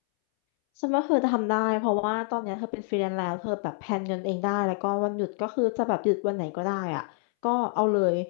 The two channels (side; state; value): right; silent; 60 dB below the other